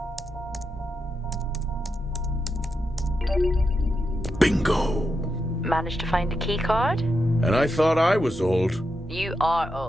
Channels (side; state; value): both; normal; correlation 0.86